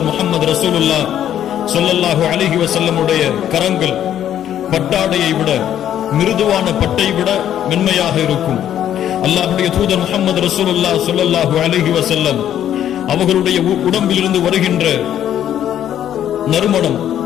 முஹம்மது ரசூலுல்லாஹ் ஸல்லல்லாஹு அலைஹி வஸல்லமுடைய கரங்கள் பட்டாடையை விட, மிருதுவான பட்டை விட மென்மையாக இருக்கும். அல்லாஹ்வுடைய தூதர் முஹம்மது ரசூலுல்லாஹ் ஸல்லல்லாஹு அலைஹி வஸல்லம் அவர்களுடைய உடம்பிலிருந்து வருகின்ற நறுமணம்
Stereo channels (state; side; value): quieter; right; 10.7 dB